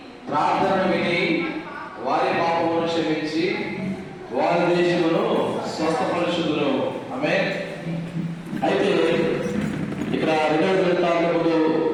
ప్రార్థనను విని వారి పాపమును క్షమించి వారి దేశమును స్వస్థపరుచుదును. ఆమేన్. అయితే ఇక్కడ 2వ దినవృత్తాంతములు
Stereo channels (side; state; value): both; identical; correlation 1.00